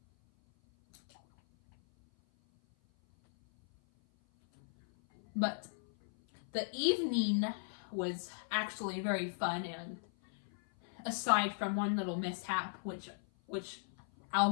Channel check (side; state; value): right; silent; 53 dB below the other